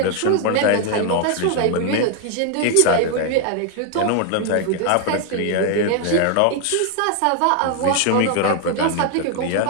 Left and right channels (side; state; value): both; different; correlation 0.00